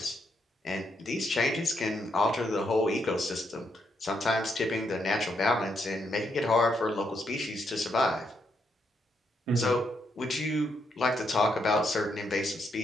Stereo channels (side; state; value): both; normal; correlation 0.77